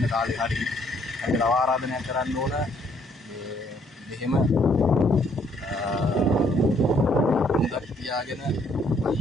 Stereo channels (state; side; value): normal; both; correlation 0.67